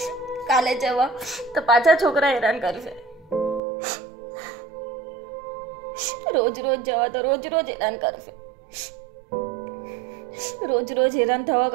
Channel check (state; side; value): drops out; left; at 3.6 s